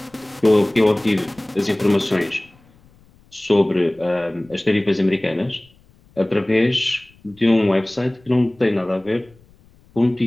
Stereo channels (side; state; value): left; noise; rumble, 30 dB below the sound